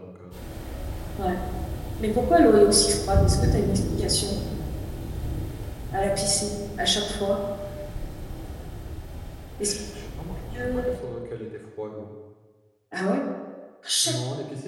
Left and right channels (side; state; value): both; identical; correlation 1.00